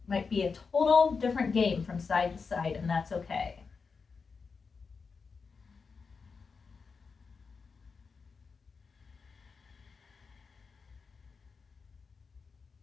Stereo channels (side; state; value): right; quieter; 5.1 dB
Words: might be a total different game from side to side, and that's okay.